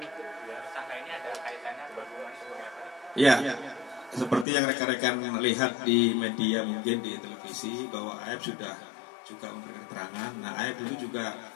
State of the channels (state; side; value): drops out; right; at 4.5 s